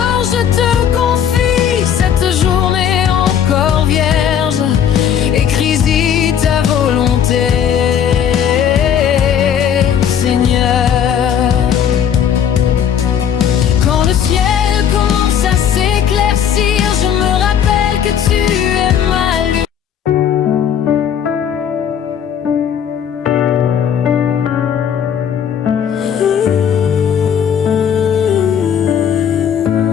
je te confie cette journée encore vierge, écris-y ta volonté, Seigneur. Quand le ciel commence à s'éclaircir, je me rappelle que tu es ma lumière.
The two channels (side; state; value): right; quieter; 8.6 dB